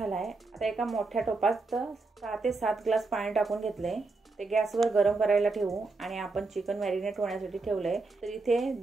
आता एका मोठ्या टोपात 6 ते 7 ग्लास पाणी टाकून घेतलंय. ते गॅसवर गरम करायला ठेवू. आणि आपण चिकन मॅरिनेट होण्यासाठी ठेवलंय. तर इथे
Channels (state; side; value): quieter; left; 3.7 dB